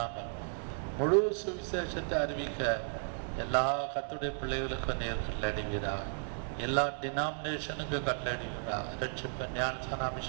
முழு சுவிசேஷத்தை அறிவிக்க எல்லா கர்த்தருடைய பிள்ளைகளுக்கும் நீர் கட்டளையிடுவீராக. எல்லா டினாமினேஷனுக்கும் கட்டளையிடுவீராக. ரட்சிப்பு, ஞானஸ்நான,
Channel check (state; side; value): silent; left; digital silence